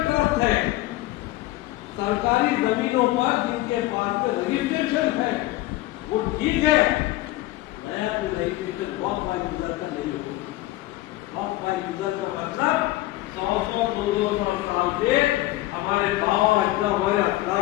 ट्रस्ट है सरकारी जमीनों पर जिनके पास में रजिस्ट्रेशन है वो ठीक है, नया तो रजिस्ट्रेशन वॉक बाय यूजर का नहीं होगा। वॉक बाय यूजर का मतलब 100-200 साल से हमारे गाँव हमारे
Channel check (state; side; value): quieter; right; 17.4 dB